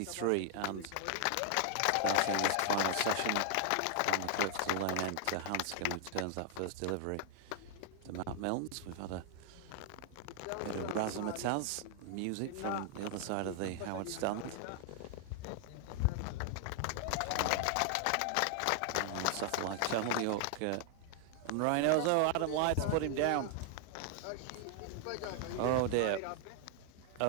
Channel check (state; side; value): different; both; correlation -0.01